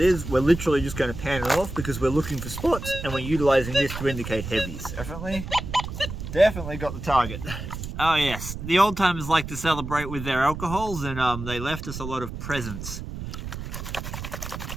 is. We're literally just going to pan it off because we're looking for spots and we're utilizing this to indicate heavies. Definitely got the target. Oh yes, the old timers like to celebrate with their alcohols, and they left us a lot of presents.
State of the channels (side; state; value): right; noise; rumble, 8 dB below the sound